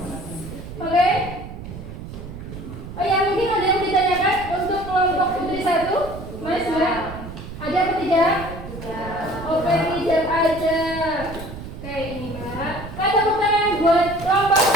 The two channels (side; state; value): right; noise; rumble, 11 dB below the sound